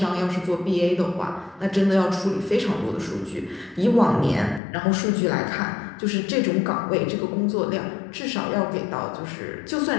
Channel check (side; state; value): right; drops out; at 4.6 s